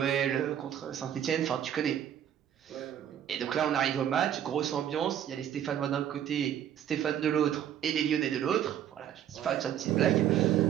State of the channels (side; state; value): left; quieter; 10.2 dB